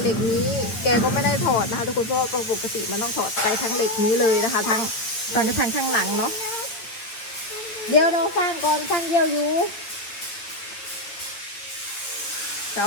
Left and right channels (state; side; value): late; right; 9.2 ms